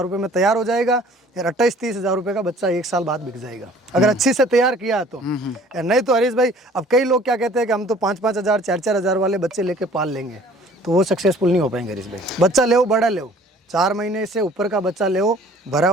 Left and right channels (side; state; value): both; normal; correlation 0.52